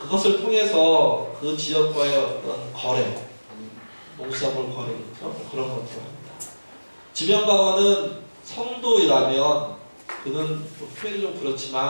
그것을 통해서 그 지역과의 어떤 거래, 농수산물 거래겠죠. 그런 것들 합니다. 지명방어는 성도이라면 그는 표현이 좀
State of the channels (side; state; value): both; inverted; correlation -1.00